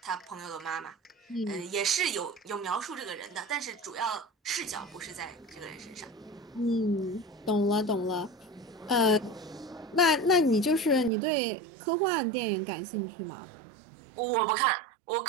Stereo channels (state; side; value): drops out; left; at 11.1 s